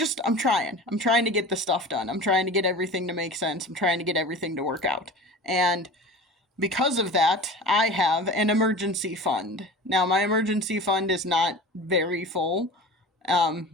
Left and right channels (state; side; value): normal; both; correlation 0.37